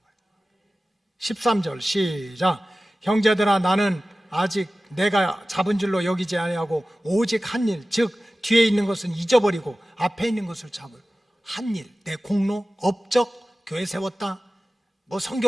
거야. 13절 시작. 형제들아, 나는 아직 내가 잡은 줄로 여기지 아니하고 오직 한 일, 즉 뒤에 있는 것은 잊어버리고 앞에 있는 것을 잡을 한 일, 내 공로, 업적, 교회 세웠다,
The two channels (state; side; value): normal; both; correlation 0.96